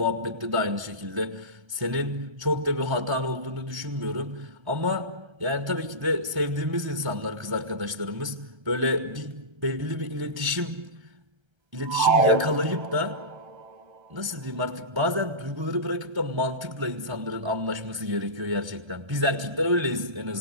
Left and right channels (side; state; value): left; late; 1.3 ms